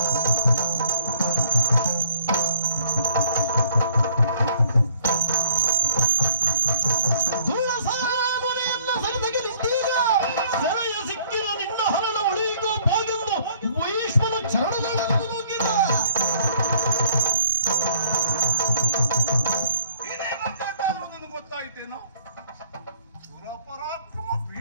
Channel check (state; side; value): inverted; both; correlation -0.61